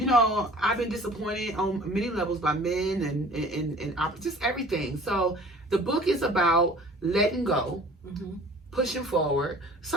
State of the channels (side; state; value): both; normal; correlation 0.47